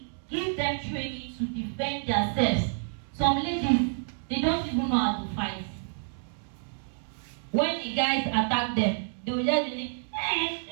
give them training to defend themselves. Some ladies, they don't even know how to fight. When the guys attack them, they will just be like, hey,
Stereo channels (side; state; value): left; silent; digital silence